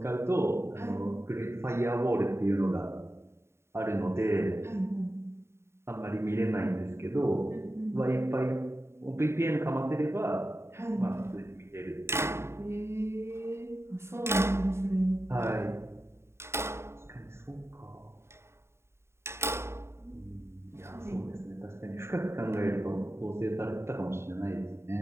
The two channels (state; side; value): late; left; 0.13 ms